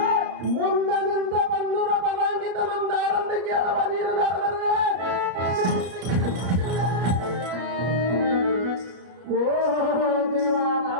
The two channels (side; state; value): left; late; 33 ms